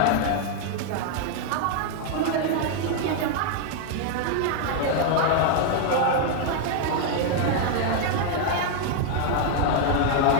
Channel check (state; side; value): different; both; correlation 0.00